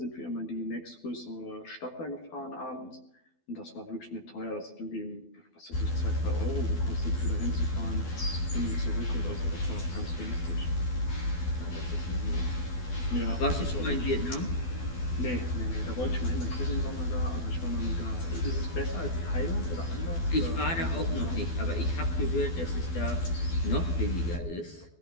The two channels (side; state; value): right; late; 12 ms